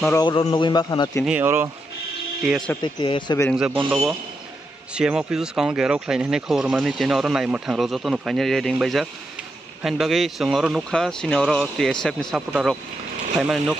Noro November Hanatini or TSF bearing the Bondovo. CM officers count Garo Klein and Hormani or Naimatan Rosoto, finally reading by Jack. Handbaggy, Sungoro Nuka, Sinoro, TSF in Sapota Rock, Payman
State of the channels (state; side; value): normal; both; correlation 0.83